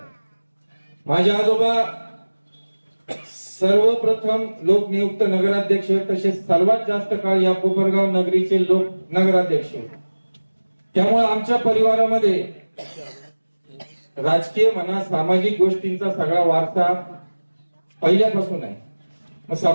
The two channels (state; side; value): inverted; both; correlation -1.00